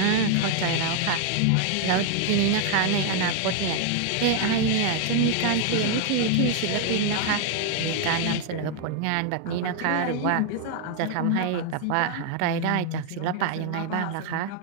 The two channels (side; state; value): both; different; correlation 0.00